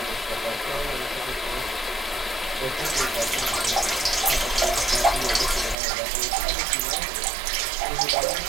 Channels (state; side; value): drops out; left; at 5.8 s